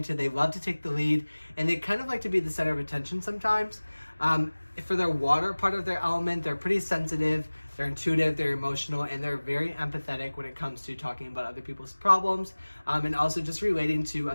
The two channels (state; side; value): inverted; both; correlation -1.00